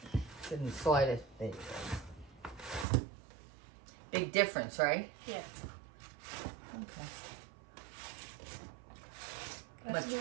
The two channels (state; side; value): drops out; left; at 2.9 s